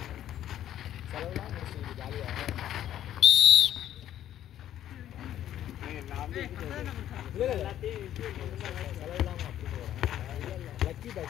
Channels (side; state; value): right; quieter; 11.6 dB